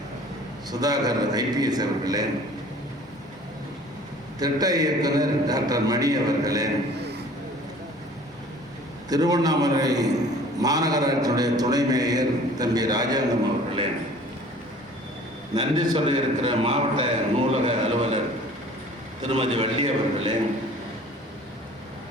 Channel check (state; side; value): normal; both; correlation 0.49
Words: சுதாகர் IPS அவர்களே, திட்ட இயக்குனர் டாக்டர் மணி அவர்களே, திருவண்ணாமலை மாநகராட்சியுடைய துணை மேயர் தம்பி ராஜாங்கம் அவர்களே, நன்றி சொல்ல இருக்கிற மாவட்ட நூலக அலுவலர் திருமதி வள்ளி அவர்களே,